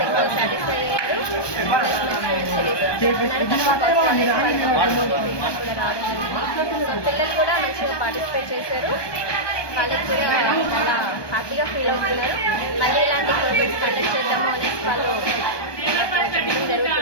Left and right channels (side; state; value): right; late; 1.2 ms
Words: సాటిస్ఫై అయ్యారు. పిల్లలు కూడా మంచిగా పార్టిసిపేట్ చేశారు. వాళ్ళకి కూడా చాలా హ్యాపీగా ఫీల్ అవుతున్నారు. మళ్ళీ ఇలాంటి ప్రోగ్రామ్స్ కండక్ట్ చేద్దాము అనేసి వాళ్ళు చెప్పడం